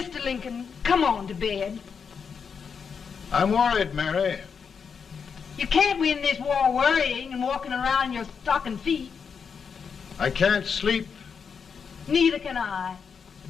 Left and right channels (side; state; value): right; quieter; 6.3 dB